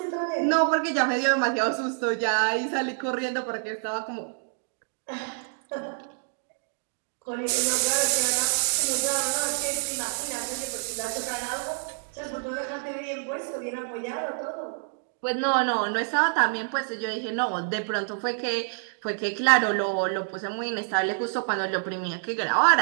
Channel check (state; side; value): silent; left; digital silence